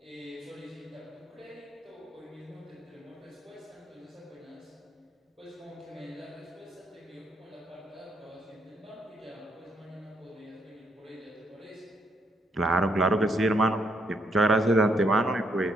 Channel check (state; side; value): normal; both; correlation 0.73